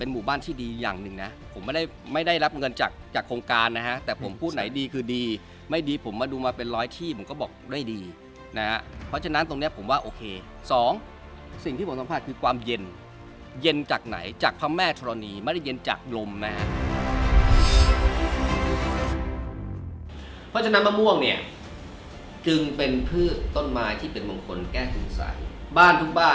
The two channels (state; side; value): identical; both; correlation 1.00